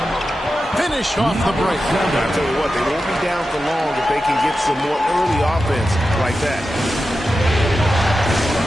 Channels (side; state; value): both; normal; correlation 0.91